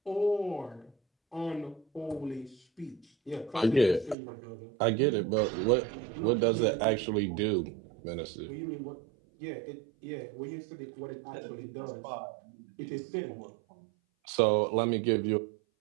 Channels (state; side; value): drops out; left; at 4.2 s